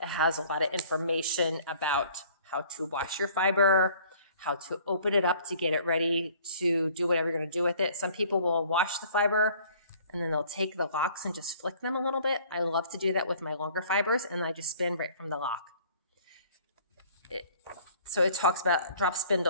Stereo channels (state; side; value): inverted; both; correlation -0.54